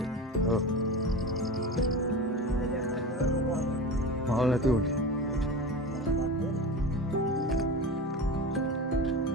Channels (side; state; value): both; normal; correlation 0.28